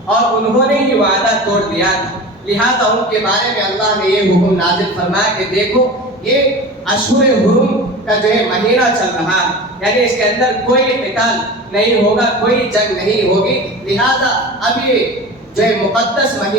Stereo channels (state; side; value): normal; both; correlation 0.33